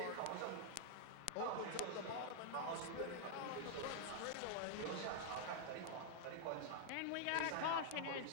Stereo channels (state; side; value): different; both; correlation -0.01